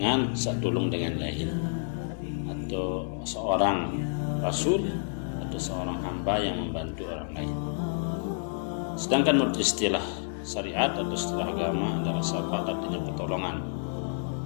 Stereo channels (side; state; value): right; silent; digital silence